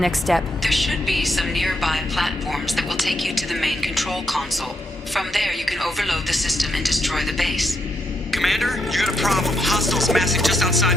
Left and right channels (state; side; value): normal; both; correlation 0.79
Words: step? There should be some nearby platforms that will take you to the main control console. From there, you can overload the system and destroy the base. Commander, you got a problem. Hostiles massing just